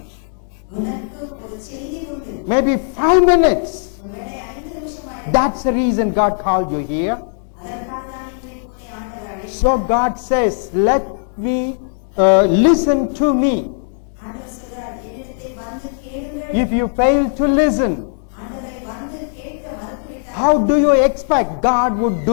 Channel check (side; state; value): right; silent; digital silence